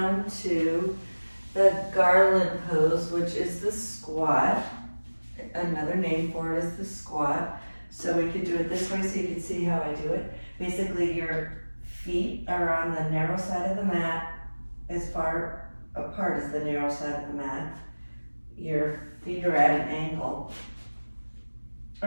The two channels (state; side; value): inverted; both; correlation -1.00